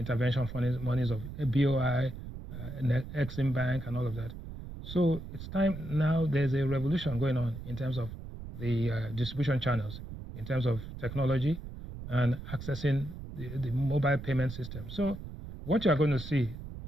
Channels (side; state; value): right; noise; rumble, 10 dB below the sound